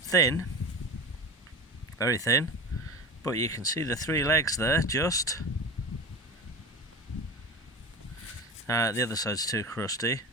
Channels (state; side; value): normal; both; correlation 0.28